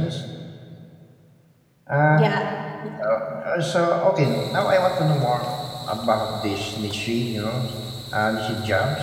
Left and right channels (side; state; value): both; identical; correlation 1.00